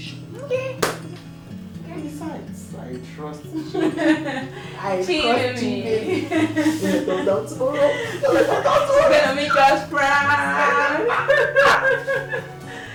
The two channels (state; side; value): identical; both; correlation 1.00